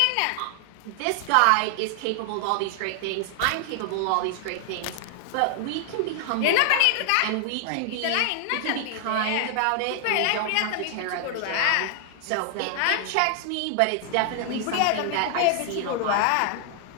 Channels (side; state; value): both; different; correlation 0.00